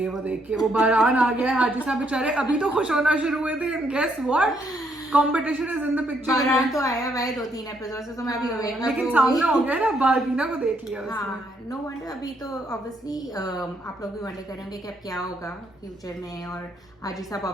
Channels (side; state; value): both; normal; correlation 0.73